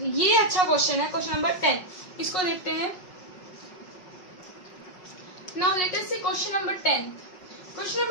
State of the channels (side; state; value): right; late; 5.4 ms